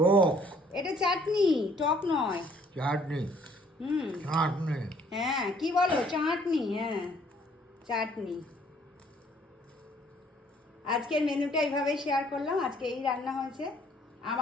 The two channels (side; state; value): both; normal; correlation 0.61